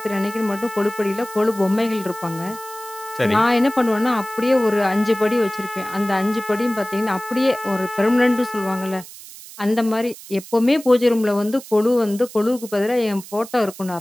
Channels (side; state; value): right; noise; hiss, 16 dB below the sound